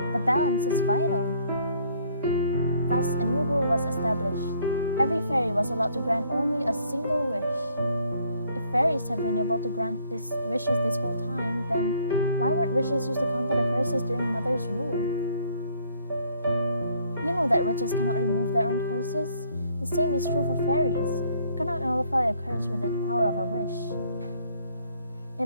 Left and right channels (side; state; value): both; inverted; correlation -0.64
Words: The balance is vital. Thus, a new rule was established. Every fairy was allowed to grant only a single wish. If fairies have been able to grant these wishes this whole time, then why weren't wishes used to counter the curses during Mother's rule? You know that witches cannot remove their own curses. The same is true for fairies. You cannot nullify a curse with the power of a wish.